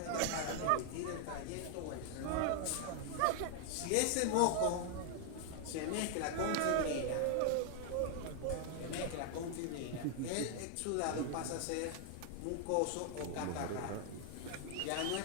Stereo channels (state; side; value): different; both; correlation 0.00